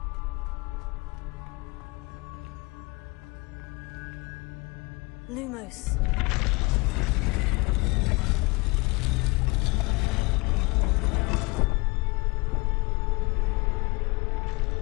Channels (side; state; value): right; quieter; 26.0 dB